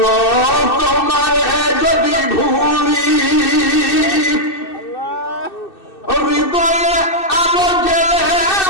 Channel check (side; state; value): right; late; 2.6 ms